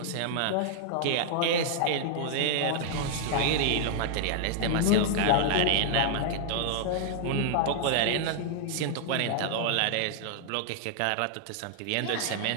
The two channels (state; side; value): different; both; correlation 0.00